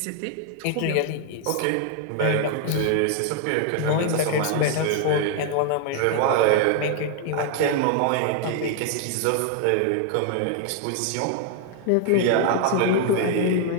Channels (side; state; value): both; different; correlation 0.00